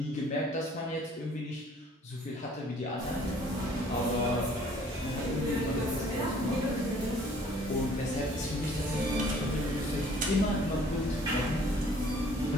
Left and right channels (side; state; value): both; normal; correlation 0.56